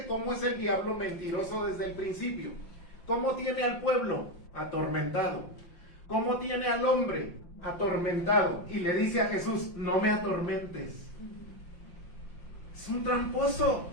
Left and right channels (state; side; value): late; right; 5.7 ms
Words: cómo es el diablo mentiroso desde el principio. ¿Cómo tiene al pueblo? Atormentado. ¿Cómo tiene al hombre? Atormentado. Y le dice a Jesús, no me atormentes. Es un tramposo.